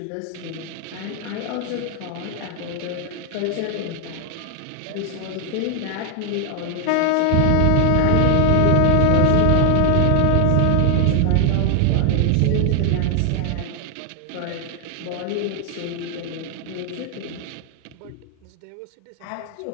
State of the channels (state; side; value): different; both; correlation 0.00